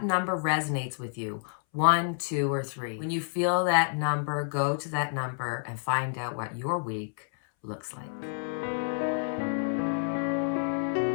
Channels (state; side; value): silent; right; 58 dB below the other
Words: number resonates with you. 1, 2, or 3. When you feel that number, go to that number and find out what your week looks like.